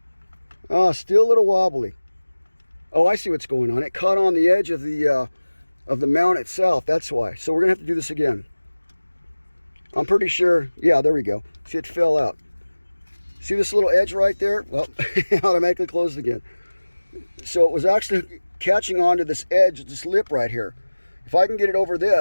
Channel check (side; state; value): both; inverted; correlation -1.00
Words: Oh, still a little wobbly. Oh, I see what's going on. It caught on the edge of the mount itself. That's why. So we're going to have to do this again. I'm pretty sure. Yeah, there we go. See, it fell out. See this little edge right there? Well, it automatically closed again. So it was actually catching onto this edge, this lip right here. If I can get it over